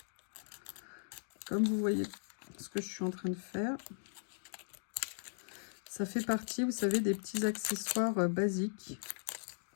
Comme vous voyez ce que je suis en train de faire, ça fait partie, vous savez, des petits accessoires basiques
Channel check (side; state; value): right; silent; digital silence